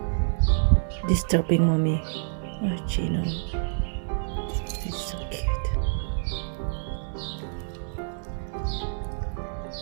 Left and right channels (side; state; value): left; silent; digital silence